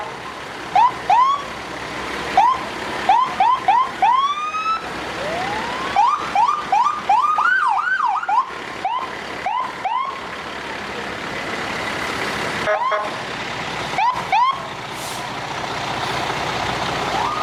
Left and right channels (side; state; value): both; identical; correlation 1.00